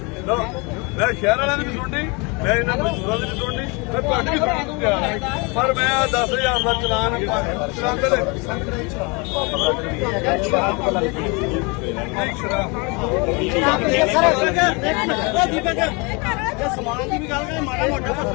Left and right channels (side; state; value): right; quieter; 29.7 dB